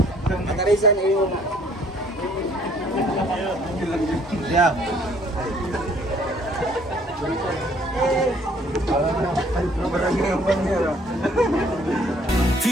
Nakarisan, iwan na. Yeah.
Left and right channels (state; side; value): normal; both; correlation 0.60